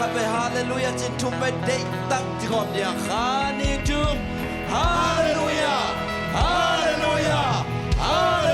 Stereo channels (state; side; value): identical; both; correlation 1.00